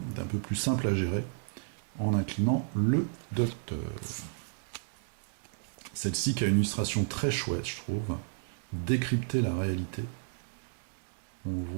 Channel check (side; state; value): left; silent; digital silence